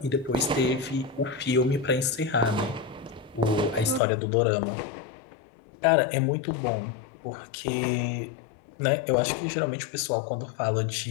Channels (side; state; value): right; drops out; at 4.0 s